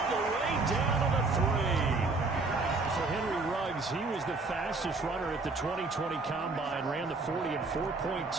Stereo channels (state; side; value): quieter; left; 3.6 dB